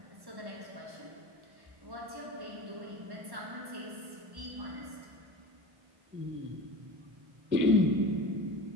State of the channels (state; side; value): late; left; 1.1 ms